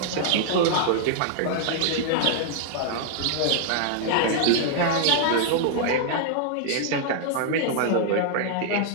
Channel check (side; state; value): both; different; correlation -0.01